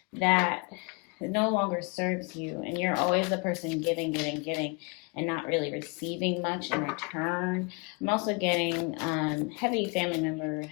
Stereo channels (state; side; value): quieter; right; 30.9 dB